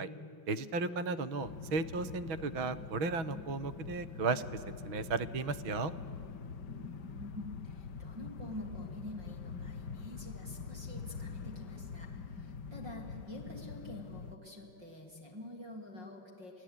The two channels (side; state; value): left; late; 6.1 ms